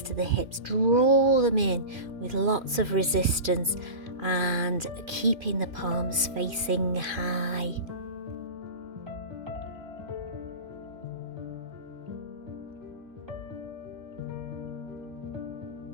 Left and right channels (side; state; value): left; late; 2.5 ms